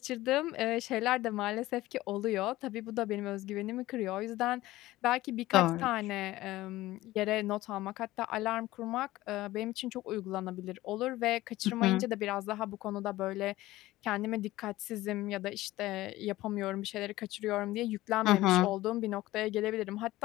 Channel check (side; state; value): right; quieter; 17.0 dB